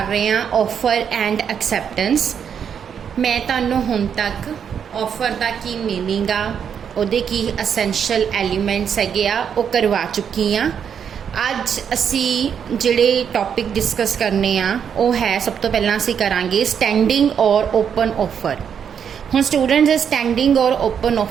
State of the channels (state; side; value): quieter; left; 7.7 dB